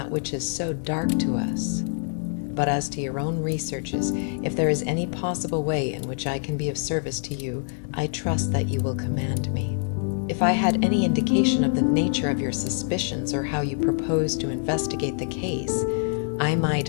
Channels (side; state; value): right; silent; 59 dB below the other